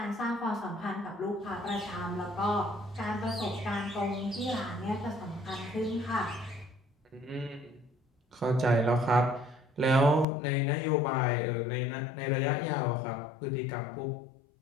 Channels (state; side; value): drops out; right; at 10.2 s